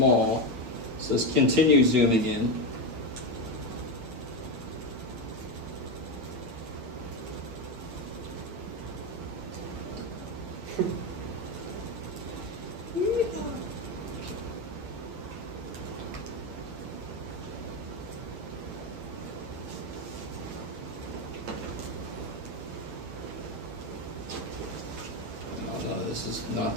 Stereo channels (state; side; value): late; left; 8.5 ms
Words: so let's continue zooming in. This is not